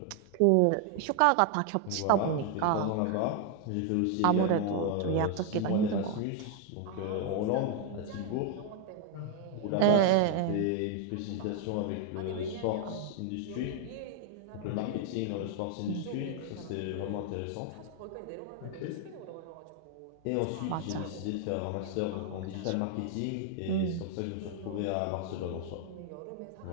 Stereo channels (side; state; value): both; different; correlation 0.00